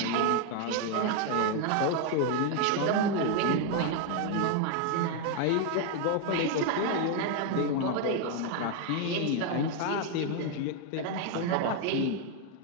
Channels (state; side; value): different; both; correlation 0.01